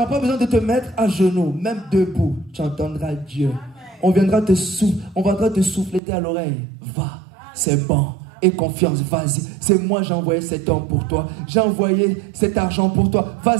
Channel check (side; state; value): left; drops out; at 6.0 s